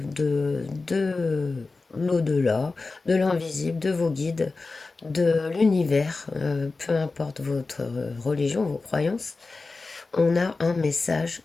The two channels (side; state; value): right; quieter; 3.8 dB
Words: l'au-delà, de l'invisible, de vos guides, de l'univers, peu importe votre religion, vos croyances. On a un message